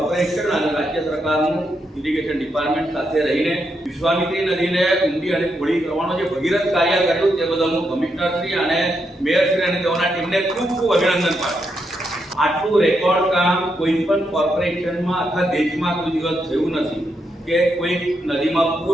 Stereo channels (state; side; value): normal; both; correlation 0.81